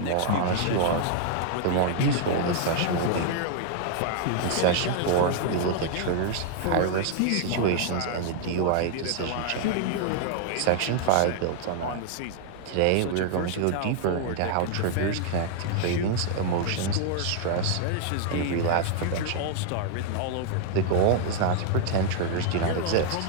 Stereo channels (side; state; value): both; different; correlation 0.00